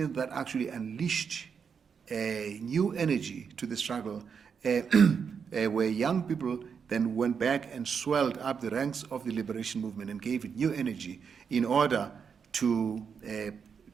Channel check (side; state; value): left; quieter; 6.5 dB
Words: that actually unleashed a new energy to the struggle, where young people then went back and swelled up the ranks of the liberation movement and gave it new energy in order to